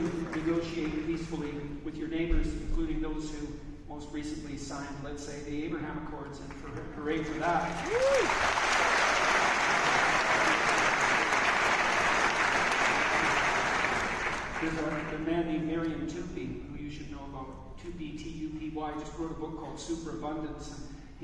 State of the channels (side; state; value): both; identical; correlation 1.00